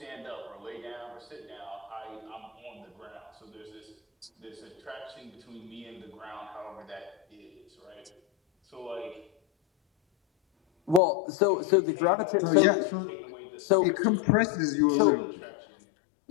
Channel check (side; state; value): right; drops out; at 11.0 s